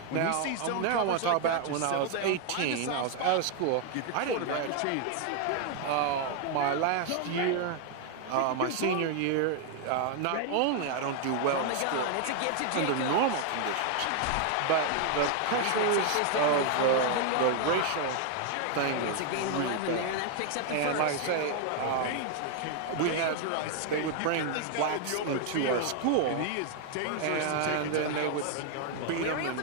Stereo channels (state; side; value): different; both; correlation 0.00